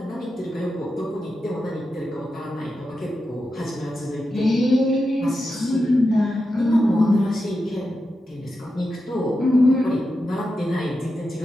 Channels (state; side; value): normal; both; correlation 0.89